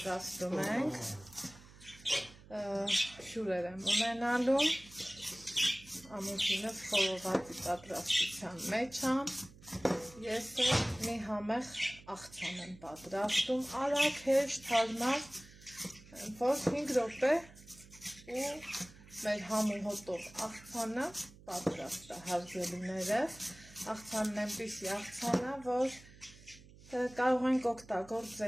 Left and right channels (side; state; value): right; noise; hum, 21 dB below the sound